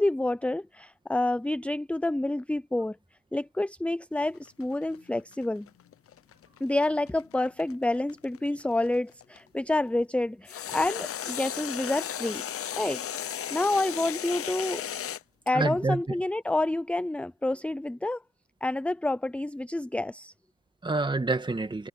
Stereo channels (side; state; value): both; normal; correlation 0.87